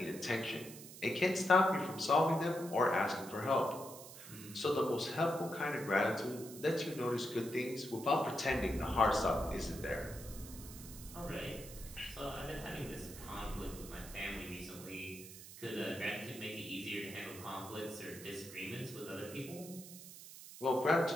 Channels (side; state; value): right; noise; hiss, 14 dB below the sound